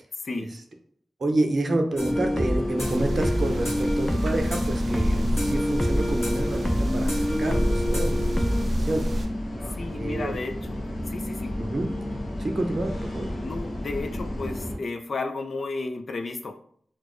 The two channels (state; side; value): normal; both; correlation 0.96